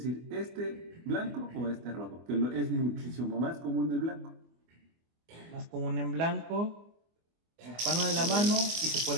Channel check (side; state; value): left; late; 24 ms